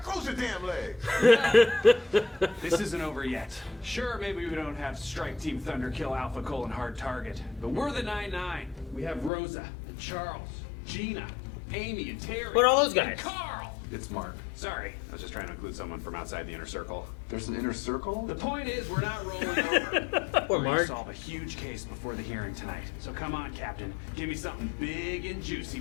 close your damn legs! This isn't over yet. Sure, maybe we don't have Strike Team Thunder kill Alpha Colon hard target, but we're the 9-9. We have Rosa, and Charles, Gina, Amy, and Terry. What are all those guys? And Carl! It's Mark. Sorry, I was just trying to include someone from outside the inner circle. There's an inner circle? The point is, we're not rolling over. Poor We're gonna Mark. solve a huge case before the hearing tonight. So come on, Captain. Give me something big and juicy.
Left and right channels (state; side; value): drops out; right; at 9.3 s